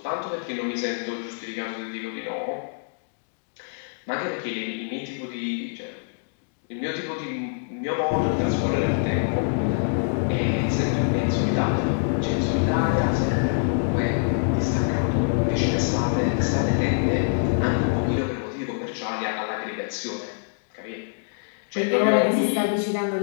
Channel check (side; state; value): right; silent; digital silence